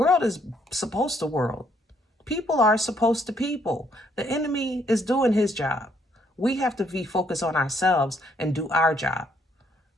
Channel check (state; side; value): normal; both; correlation 0.69